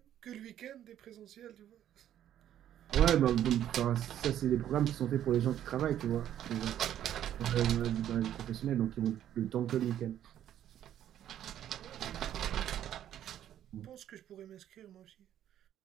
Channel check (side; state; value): left; quieter; 11.1 dB